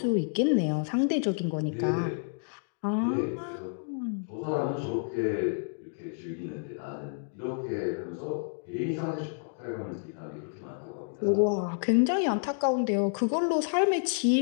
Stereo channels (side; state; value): right; silent; digital silence